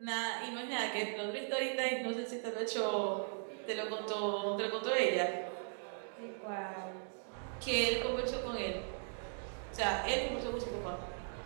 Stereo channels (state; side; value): silent; left; digital silence